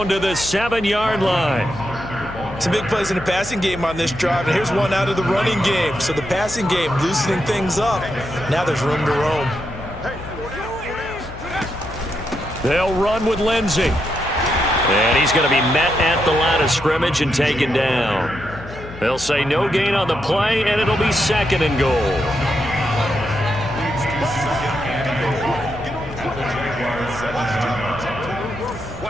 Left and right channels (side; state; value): left; noise; hum, 14 dB below the sound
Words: to the 7-yard line. Some big plays in the passing game on this drive, and here's one out of the running game. So the passing game loosening things up. Now there's room to roam. They'll run with Lindsey. And he's going to be met at the line of scrimmage and taken down. They'll say no gain on the play, and it'll be 2nd and goal.